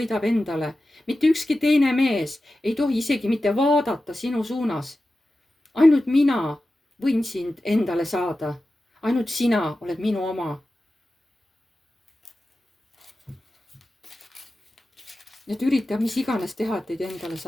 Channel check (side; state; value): both; normal; correlation 0.94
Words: endale. Mitte ükski teine mees ei tohi isegi mitte vaadata sinu suunas. Ainult mina võin sind endale saada. Ainult sina oled minu oma. Et ürita mis iganes teha, et teid endale